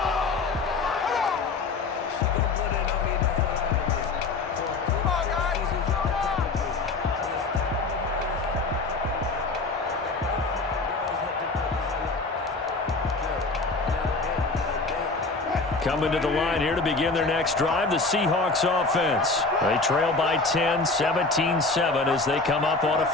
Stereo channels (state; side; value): quieter; right; 3.8 dB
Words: Coming to the line here to begin their next drive, the Seahawks offense. They trail by 10, 17-7 as they come up on a